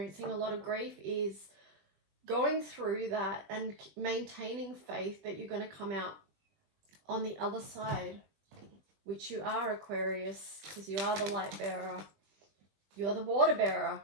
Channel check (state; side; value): late; left; 21 ms